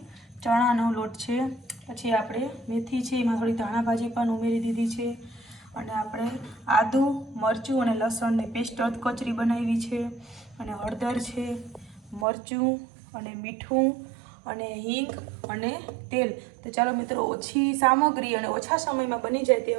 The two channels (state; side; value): drops out; left; at 12.2 s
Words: ચણાનો લોટ છે। પછી આપણે મેથી છે, એમાં થોડી ધાણા ભાજી પણ ઉમેરી દીધી છે। અને આપણે આદુ, મરચું અને લસણની પેસ્ટ કચરી બનાવી છે। અને હળદર છે, મરચું અને મીઠું અને હિંગ અને તેલ। તો ચાલો મિત્રો, ઓછી સામગ્રી અને ઓછા સમયમાં બની જાય